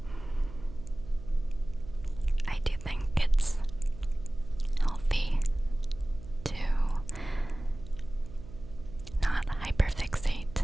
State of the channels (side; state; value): right; noise; hum, 15 dB below the sound